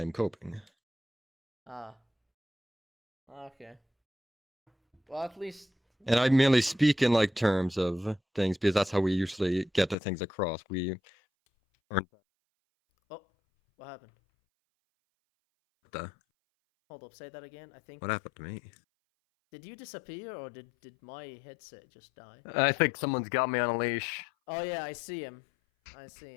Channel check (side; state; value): right; drops out; at 10.0 s